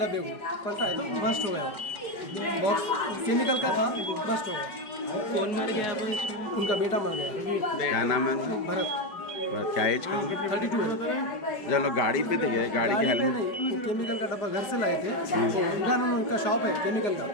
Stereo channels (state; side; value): late; right; 5.0 ms